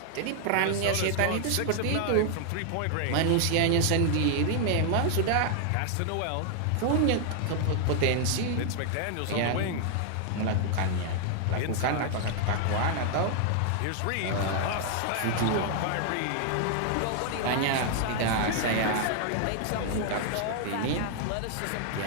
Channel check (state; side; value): different; both; correlation 0.00